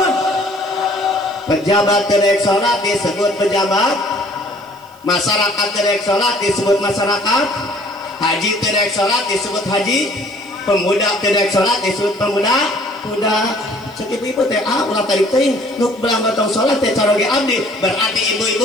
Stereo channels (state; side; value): noise; right; hiss, 28 dB below the sound